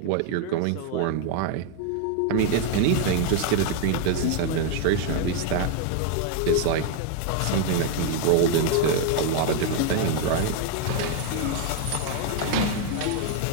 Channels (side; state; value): both; different; correlation 0.01